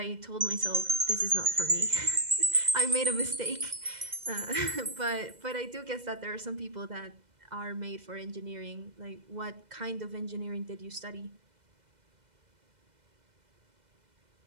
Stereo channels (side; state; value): left; late; 2.0 ms